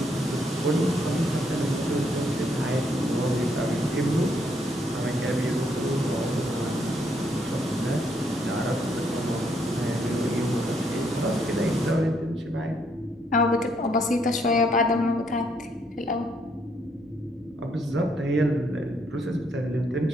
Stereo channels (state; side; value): normal; both; correlation 0.72